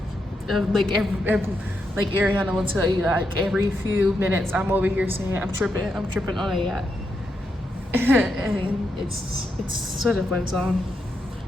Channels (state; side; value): normal; both; correlation 0.83